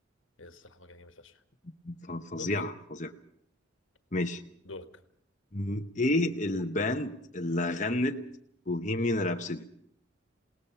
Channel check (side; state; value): both; normal; correlation 0.47